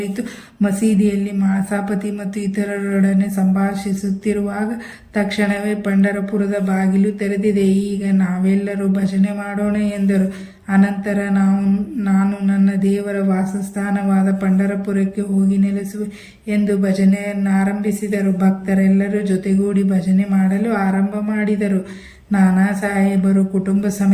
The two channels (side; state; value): both; identical; correlation 1.00